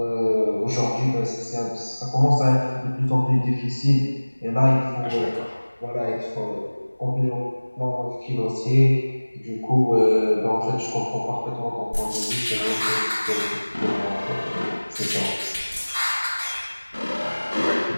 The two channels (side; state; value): both; inverted; correlation -1.00